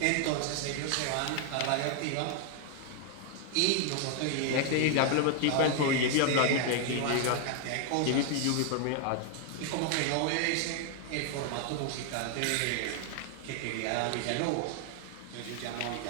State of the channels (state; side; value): different; both; correlation 0.00